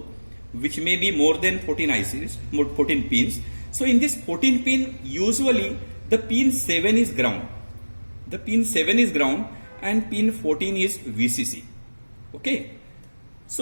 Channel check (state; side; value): inverted; both; correlation -1.00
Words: which may be more than 14 ICs, more 14 pins. So in this 14 pin, usually the pin 7 is ground. The pin 7 is ground and pin 14 is VCC. Okay.